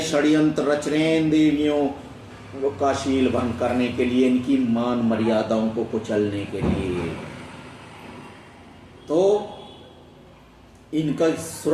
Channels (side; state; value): both; identical; correlation 1.00